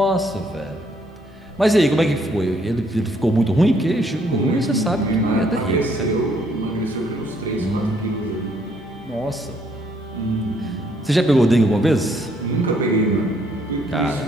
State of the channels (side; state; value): both; normal; correlation 0.68